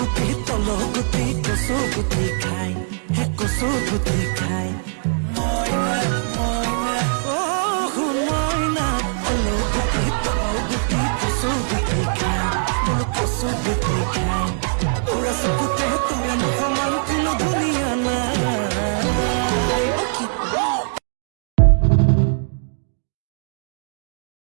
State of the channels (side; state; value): left; silent; digital silence